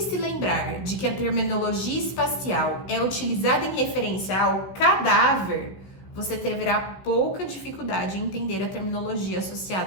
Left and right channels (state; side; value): late; right; 16 ms